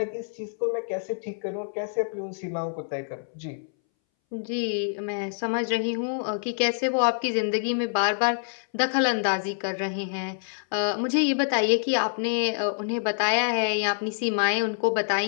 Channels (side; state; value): right; silent; 61 dB below the other